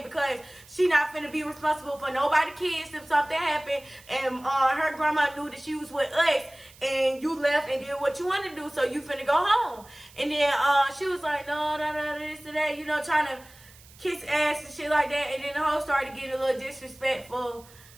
because she not finna be responsible for nobody kids if something happened, and her grandma knew that she was with us, and you left and did what you wanted to do, so you finna go home. And then she was like, no, this and that, trying to kiss ass and shit like that, and then the hoe started getting a little disrespectful.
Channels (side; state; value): right; noise; hiss, 23 dB below the sound